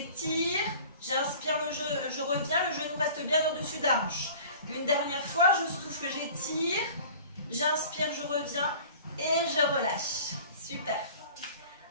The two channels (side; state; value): both; inverted; correlation -0.44